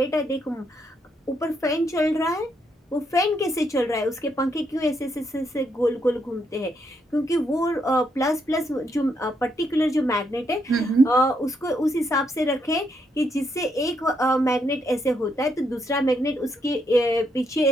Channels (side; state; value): both; normal; correlation 0.77